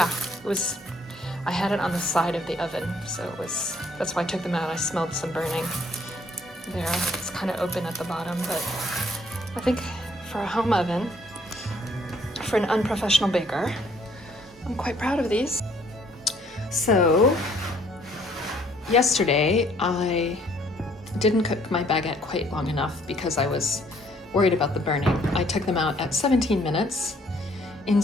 I had it on the side of the oven, so that's why I took them out. I smelled some burning there. It's kind of open at the bottom, but I think for a home oven, for an unprofessional baker, I'm quite proud of these. So yesterday I didn't cook my baguette quite long enough because I was worried about the burning. I took them out at 17 minutes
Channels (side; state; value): both; normal; correlation 0.63